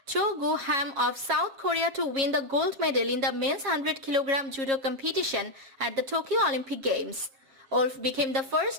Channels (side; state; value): left; late; 7.4 ms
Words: Cho Gu-ham of South Korea to win the gold medal in the men's 100 kg judo competition at the Tokyo Olympic Games. Wolf became the